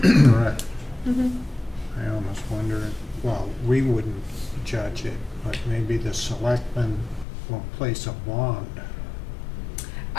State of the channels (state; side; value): drops out; right; at 7.2 s